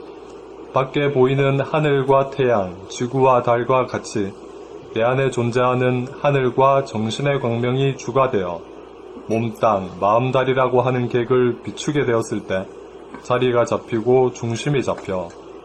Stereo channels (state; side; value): identical; both; correlation 1.00